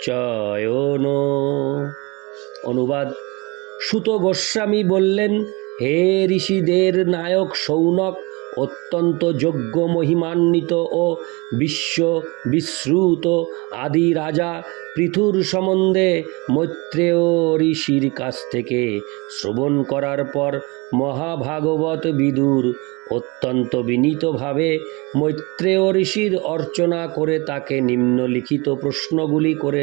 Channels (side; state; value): left; quieter; 26.5 dB